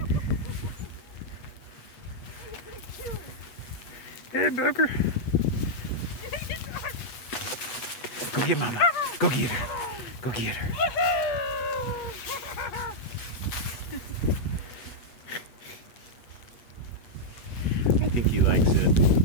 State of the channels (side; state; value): right; late; 8.2 ms